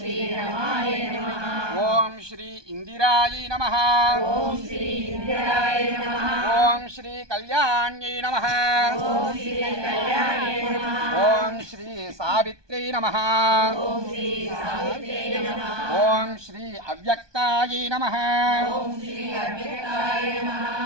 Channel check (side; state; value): left; late; 1.2 ms